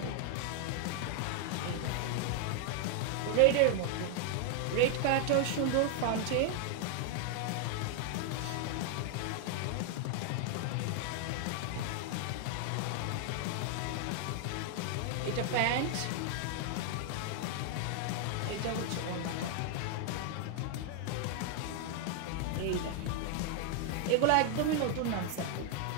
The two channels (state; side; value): different; both; correlation 0.00